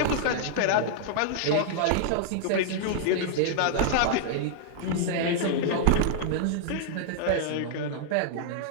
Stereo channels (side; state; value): both; different; correlation -0.01